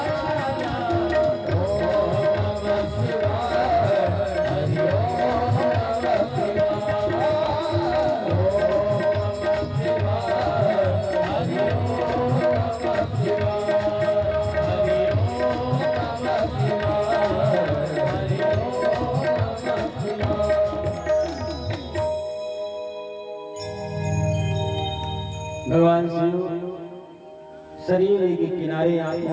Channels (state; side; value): identical; both; correlation 1.00